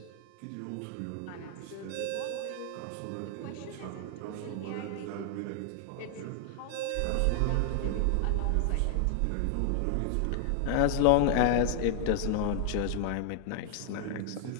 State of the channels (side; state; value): both; different; correlation 0.00